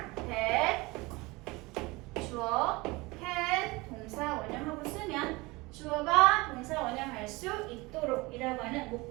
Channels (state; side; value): quieter; left; 23.4 dB